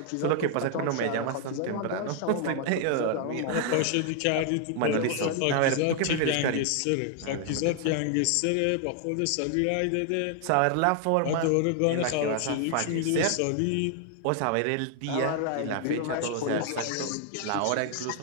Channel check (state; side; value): different; both; correlation 0.00